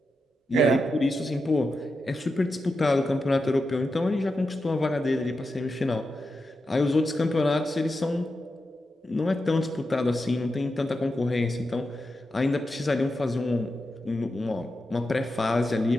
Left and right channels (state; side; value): normal; both; correlation 0.88